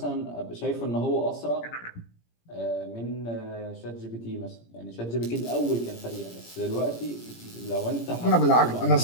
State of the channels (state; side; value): late; right; 17 ms